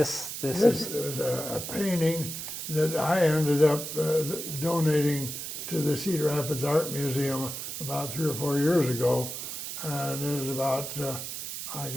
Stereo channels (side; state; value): right; noise; hiss, 6 dB below the sound